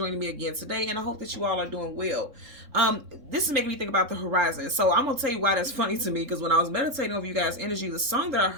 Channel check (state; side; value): late; left; 3.6 ms